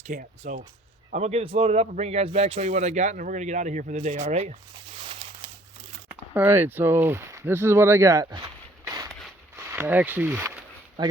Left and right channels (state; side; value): normal; both; correlation 0.58